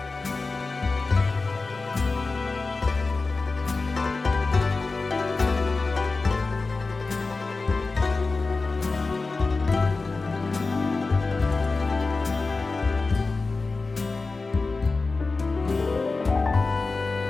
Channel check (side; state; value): right; quieter; 3.8 dB